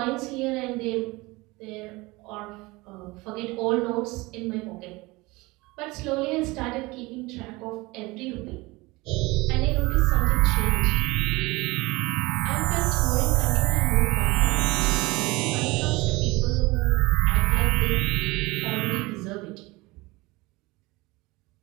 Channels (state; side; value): quieter; left; 22.6 dB